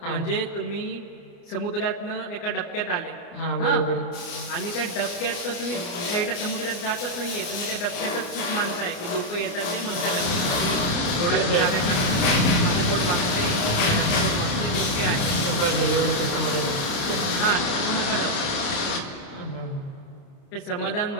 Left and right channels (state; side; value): late; right; 29 ms